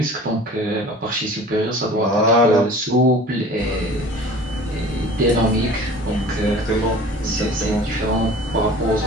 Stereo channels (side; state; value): both; normal; correlation 0.44